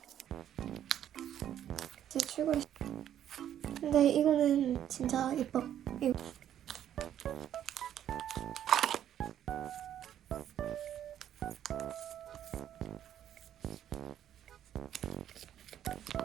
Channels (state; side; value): quieter; left; 10.6 dB